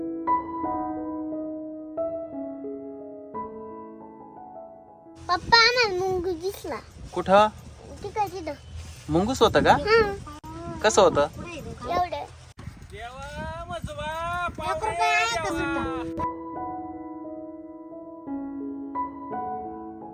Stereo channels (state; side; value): identical; both; correlation 1.00